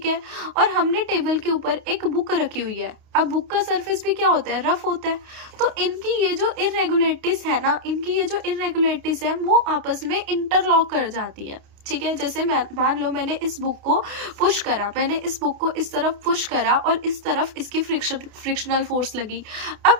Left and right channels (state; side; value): late; left; 28 ms